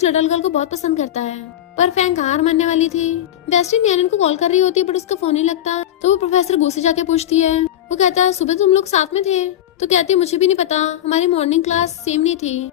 लिटिल गर्ल को बहुत पसंद करता है। पर फैंक हार मानने वाली थी। बेस्टी नैनन को कॉल कर रही होती है बट उसका फोन नहीं लगता, तो वो प्रोफेसर गो से जाके पूछती है। वो कहता है सुबह तुम लोग साथ में थे? तो कहती है मुझे भी नहीं पता, हमारी मॉर्निंग क्लास सेम नहीं थी,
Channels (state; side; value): quieter; right; 11.7 dB